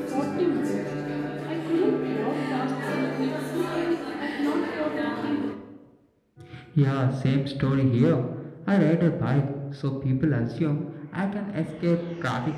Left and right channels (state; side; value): identical; both; correlation 1.00